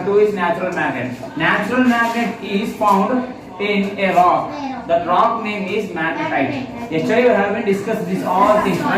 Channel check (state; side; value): identical; both; correlation 1.00